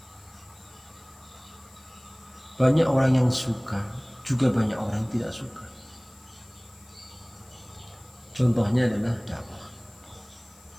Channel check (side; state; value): left; noise; hiss, 27 dB below the sound